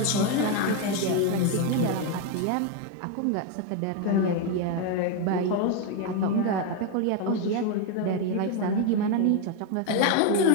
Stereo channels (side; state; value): both; different; correlation 0.01